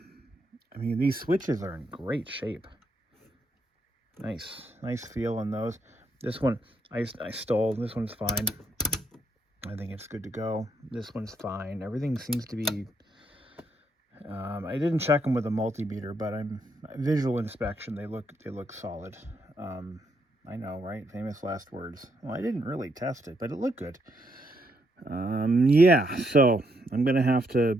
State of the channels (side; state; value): both; normal; correlation 0.76